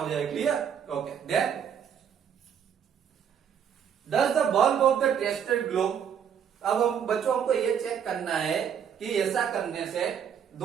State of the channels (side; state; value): left; quieter; 8.1 dB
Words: जाए। Clear? Okay. Then does the bulb of the tester glow. अब हम बच्चों हमको ये चेक करना है कि ऐसा करने से,